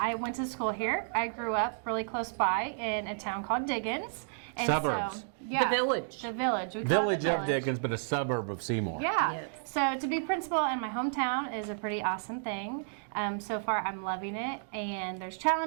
went to school here. I grew up really close by in a town called Diggins. And Suburbs. So, yeah, The village. The village. We call it Village the of Dickens, but a suburb of Seymour. Yeah. Yes. So to be principal in my hometown is a pretty awesome thing. So far I'm loving it, and there's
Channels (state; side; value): silent; left; digital silence